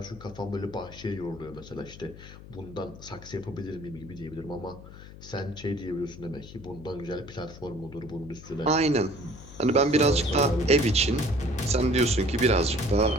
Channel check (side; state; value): left; noise; hum, 16 dB below the sound